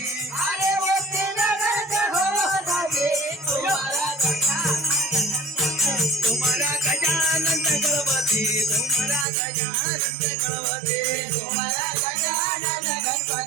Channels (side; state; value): left; drops out; at 9.2 s